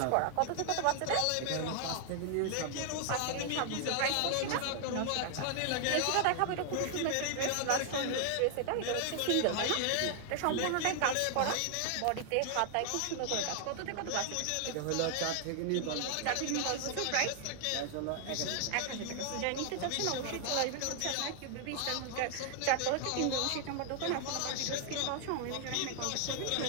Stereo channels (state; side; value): different; both; correlation 0.00